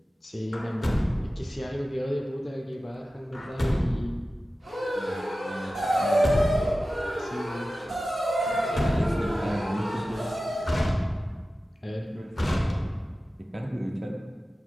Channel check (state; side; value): normal; both; correlation 0.95